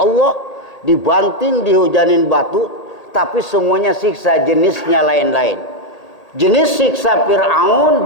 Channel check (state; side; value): late; right; 1.8 ms